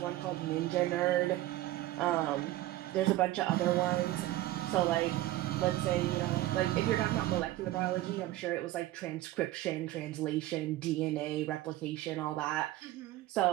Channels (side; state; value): left; quieter; 15.9 dB